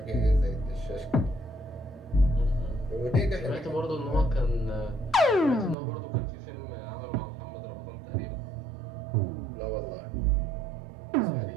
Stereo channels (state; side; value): drops out; left; at 5.8 s